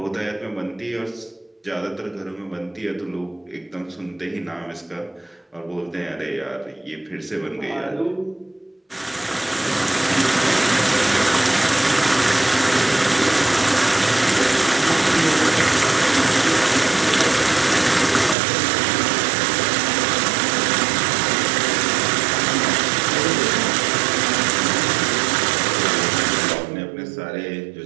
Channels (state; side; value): drops out; left; at 18.4 s